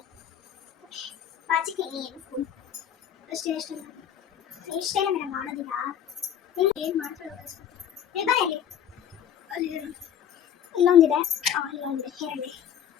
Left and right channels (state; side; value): quieter; right; 9.6 dB